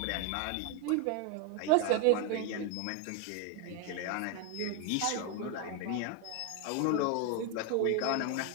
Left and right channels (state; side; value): different; both; correlation 0.01